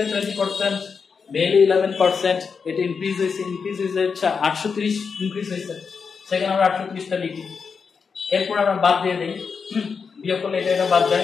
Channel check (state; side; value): quieter; right; 5.6 dB